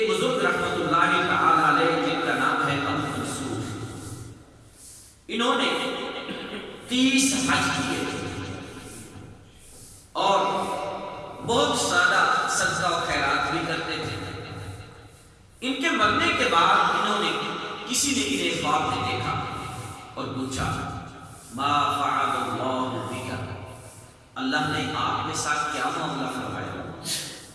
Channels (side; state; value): both; identical; correlation 1.00